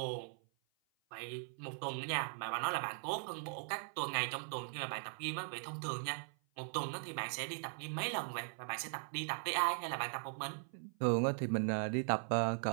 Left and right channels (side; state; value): left; silent; 51 dB below the other